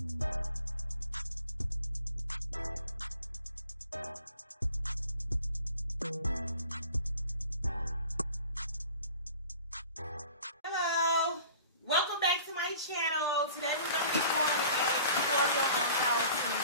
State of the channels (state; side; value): inverted; both; correlation -0.47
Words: welcome back to my channel. Today we're going to be doing a tutorial on how to